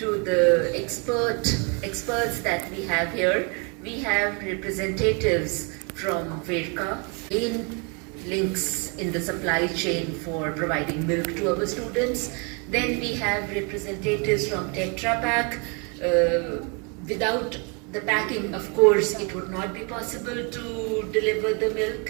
the experts that we have here, we have representatives from Verka, in links in the supply chain for providing milk to our students. Then we have representatives from Tetra Pak. Without the packing, of course, it would not be possible to deliver the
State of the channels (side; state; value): left; quieter; 34.0 dB